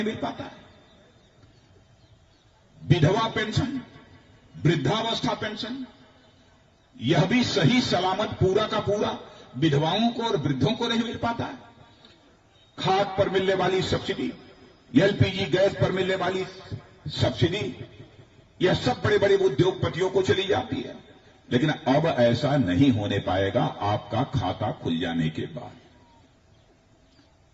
मिल पाता है। विधवा पेंशन, वृद्धावस्था पेंशन, यह भी सही सलामत पूरा का पूरा विधवाओं को और वृद्धों को नहीं मिल पाता है। खाद पर मिलने वाली सब्सिडी, एलपीजी गैस पर मिलने वाली सब्सिडी, यह सब बड़े बड़े उद्योगपतियों को चली जाती है। लेकिन अब ऐसा नहीं होने पाएगा आपका खाता खुल जाने के बाद।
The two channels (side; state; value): both; identical; correlation 1.00